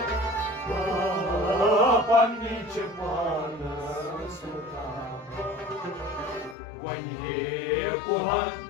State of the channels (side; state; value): right; drops out; at 6.6 s